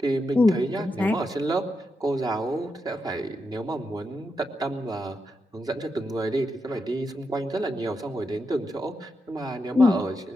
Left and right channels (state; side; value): normal; both; correlation 0.85